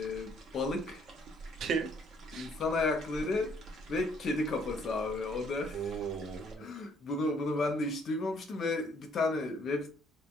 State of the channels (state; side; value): normal; both; correlation 0.65